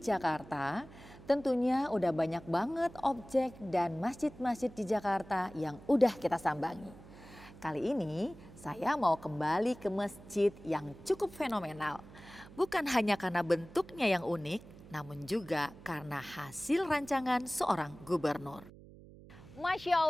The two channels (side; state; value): right; noise; hum, 19 dB below the sound